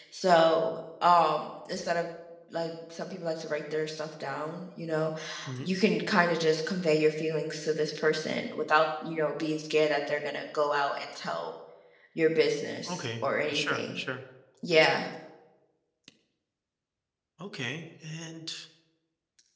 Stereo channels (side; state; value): both; identical; correlation 1.00